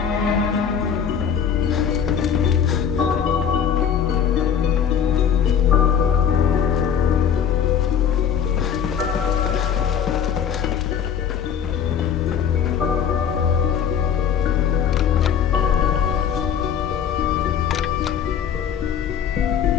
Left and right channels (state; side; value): quieter; right; 8.0 dB